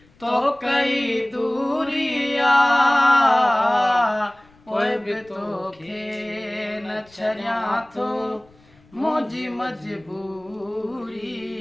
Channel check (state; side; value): noise; left; rumble, 30 dB below the sound